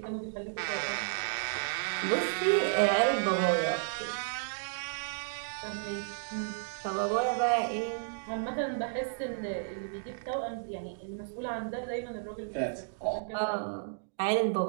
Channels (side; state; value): left; silent; digital silence